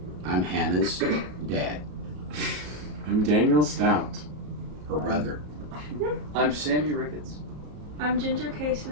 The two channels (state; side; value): late; left; 34 ms